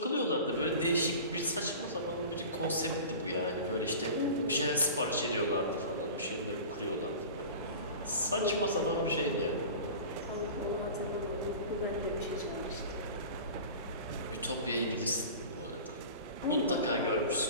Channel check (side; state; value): both; inverted; correlation -0.36